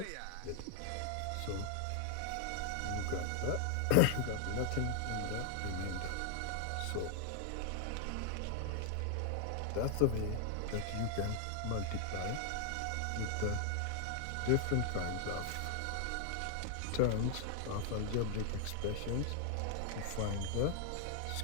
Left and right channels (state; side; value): different; both; correlation 0.00